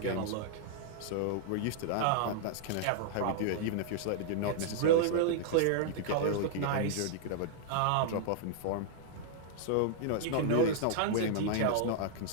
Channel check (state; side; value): different; both; correlation -0.01